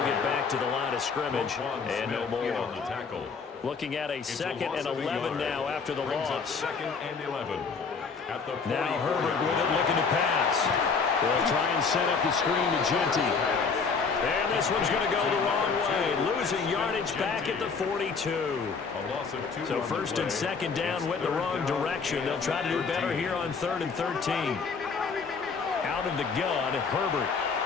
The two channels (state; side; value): quieter; right; 5.2 dB